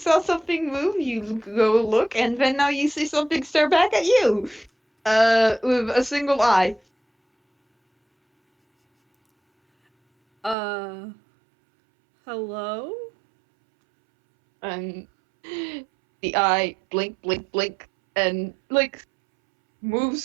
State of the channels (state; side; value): drops out; left; at 10.6 s